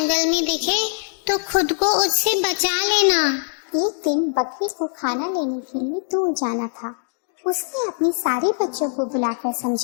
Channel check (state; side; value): silent; right; digital silence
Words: में दिखे तो खुद को उससे बचा लेना। एक दिन बकरी को खाना लेने के लिए दूर जाना था। उसने अपने सारे बच्चों को बुलाकर